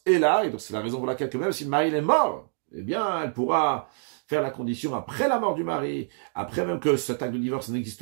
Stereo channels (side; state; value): left; silent; digital silence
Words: est là, et donc c'est la raison pour laquelle, même si le mari est mort, eh bien, elle pourra faire la condition après la mort du mari, après même que cet acte de divorce